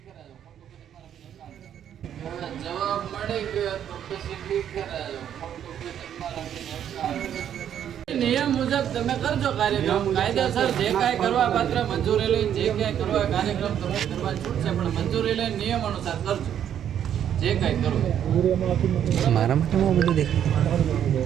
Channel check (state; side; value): quieter; left; 9.7 dB